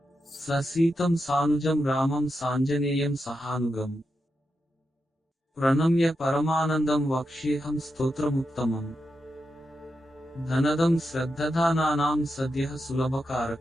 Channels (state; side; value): normal; both; correlation 0.87